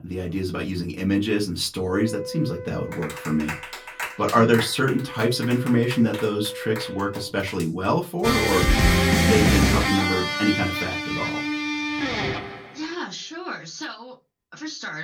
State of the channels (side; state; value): both; identical; correlation 1.00